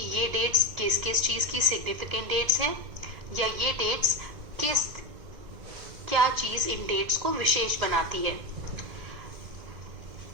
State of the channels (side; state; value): left; late; 2.0 ms